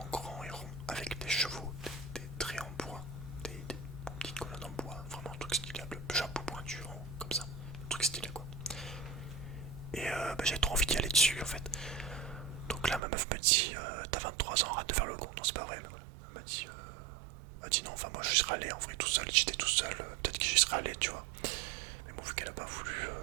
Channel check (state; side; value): drops out; left; at 13.0 s